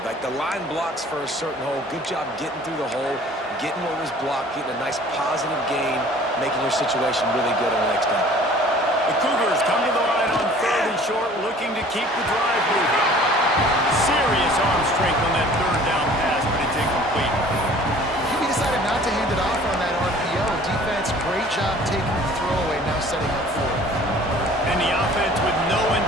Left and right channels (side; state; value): both; normal; correlation 0.50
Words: Like the line blocks for a certain hole. Good job getting through the hole, getting what was blocked, getting a nice positive gain, making your situation really good on the next down. The Cougars come to the line on 3rd and short, looking to keep the drive moving. Serious arm strength on that 3rd down pass, but it's incomplete. He decided not to job taking the throwaway, now setting up for it. And the offense with no